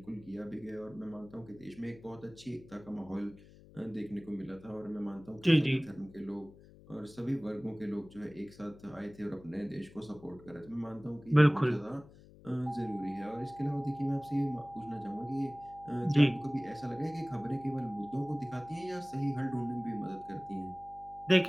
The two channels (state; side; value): noise; left; hum, 21 dB below the sound